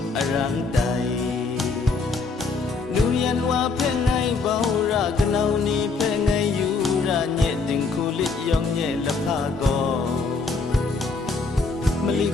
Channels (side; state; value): right; quieter; 4.1 dB